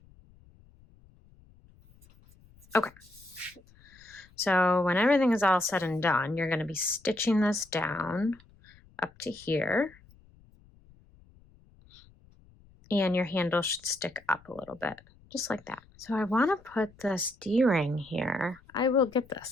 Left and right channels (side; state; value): left; noise; rumble, 27 dB below the sound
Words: Okay, so when everything is all said and done, you're going to be stitching this down up to here, and your handle should stick up a little bit, just like that. So I want to put this D-ring here. I will get